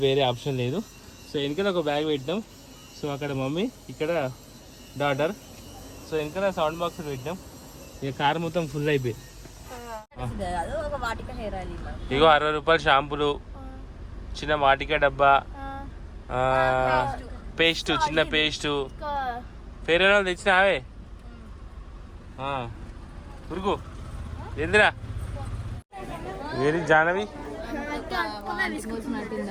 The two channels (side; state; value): both; identical; correlation 1.00